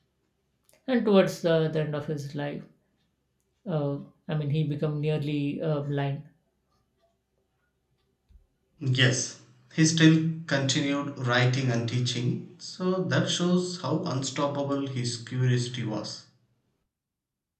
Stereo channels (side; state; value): both; identical; correlation 1.00